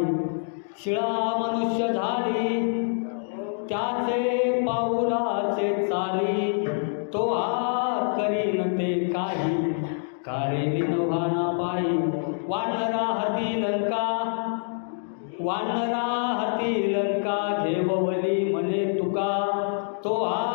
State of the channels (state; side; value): silent; right; digital silence